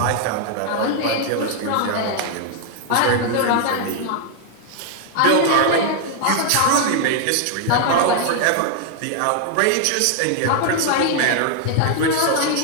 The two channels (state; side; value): different; both; correlation 0.00